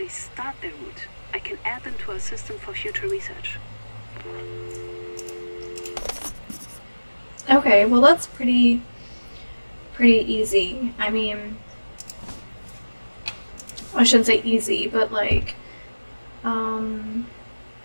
start their route, I can add them to our system for future research. Okay, well that's pretty easy. I mean, I shouldn't say easy, but like,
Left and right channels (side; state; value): both; inverted; correlation -1.00